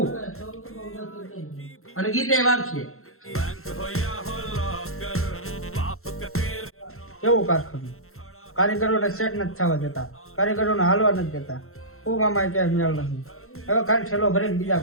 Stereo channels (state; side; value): late; right; 0.62 ms